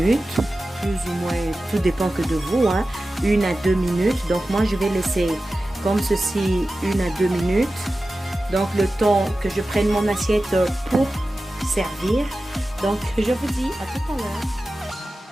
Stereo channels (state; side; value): normal; both; correlation 0.94